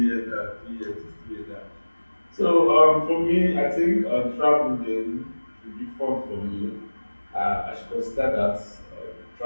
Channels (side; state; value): both; inverted; correlation -1.00